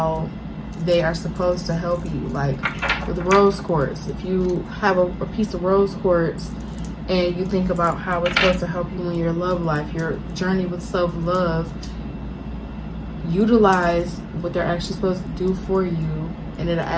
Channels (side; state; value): both; identical; correlation 1.00